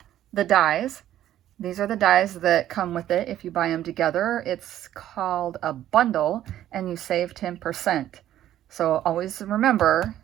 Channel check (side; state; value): left; quieter; 12.2 dB